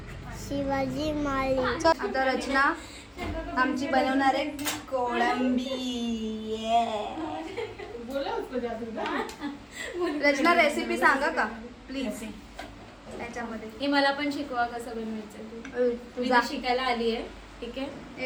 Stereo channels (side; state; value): both; identical; correlation 1.00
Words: शिवाजी माळी. आता रचना आमची बनवणार आहे कोळंबी. रचना रेसिपी सांगा का प्लीज त्याच्यामध्ये. हे मला पण शिकवा कसं बनवायचं. मी तुझा तर शिकायला आली आहे. ठीक आहे,